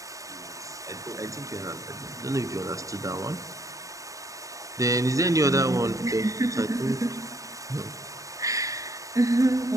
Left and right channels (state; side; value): late; left; 0.16 ms